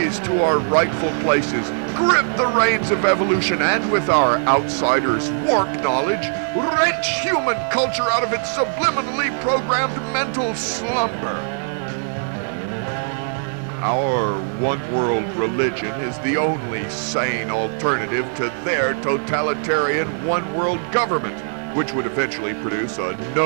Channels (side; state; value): left; silent; 65 dB below the other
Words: to our rightful places, grip the reins of evolution, and with our outsiders' warped knowledge, wrench human culture out of its subliminally programmed mental slumber. Our one-world religion is the only sane alternative to their totalitarian one-world government, which would eventually produce a